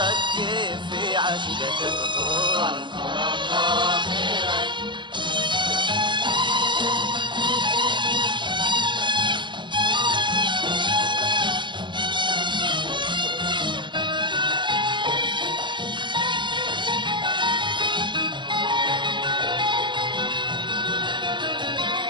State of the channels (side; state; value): left; late; 0.23 ms